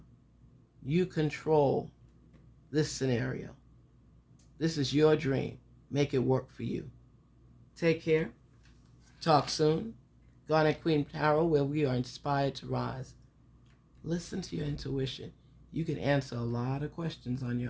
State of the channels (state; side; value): identical; both; correlation 1.00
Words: You control this scenario. This is your dream. Make it work for you. Take care. Talk soon. Garnet Queen Tarot, where we are inspired to rise. Listen to your intuition. You can answer a lot of questions on